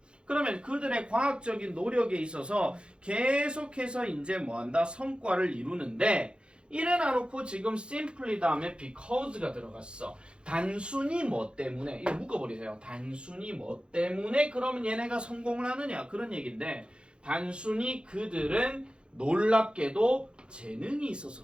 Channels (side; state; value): left; late; 0.055 ms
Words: 그러면 그들의 과학적인 노력에 있어서 계속해서 이제 뭐한다? 성과를 이루는데 이래나 놓고 지금 simply 다음에 because가 들어갔어. 단순히 뭐 때문에 이거 묶어버리세요. 단순히 뭐 때문에 그러면 얘네가 성공을 하느냐 그런 얘기인데 단순히 그들은 놀랍게도 재능이